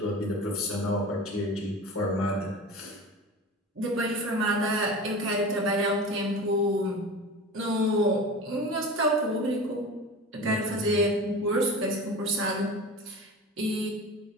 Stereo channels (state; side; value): normal; both; correlation 0.33